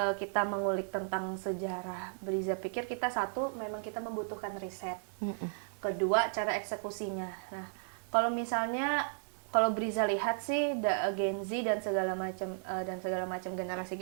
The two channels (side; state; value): left; silent; digital silence